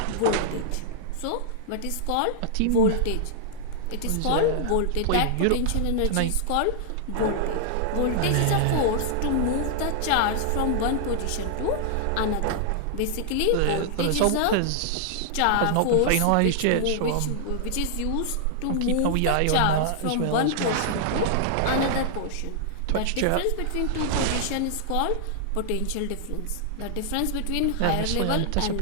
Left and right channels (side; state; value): both; different; correlation -0.01